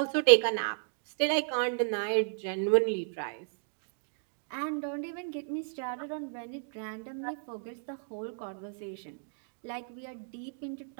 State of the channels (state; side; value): silent; left; digital silence